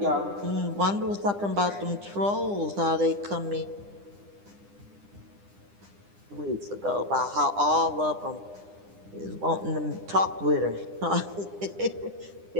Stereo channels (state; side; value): late; left; 9.9 ms